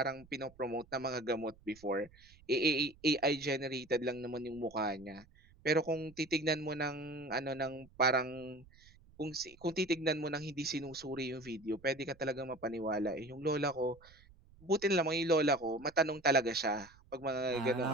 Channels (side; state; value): right; noise; rumble, 25 dB below the sound